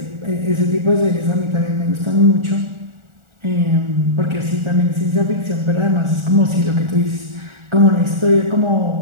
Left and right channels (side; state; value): left; late; 1.4 ms